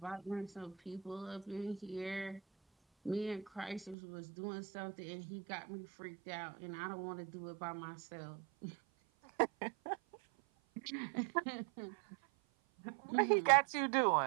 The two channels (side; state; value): left; drops out; at 4.0 s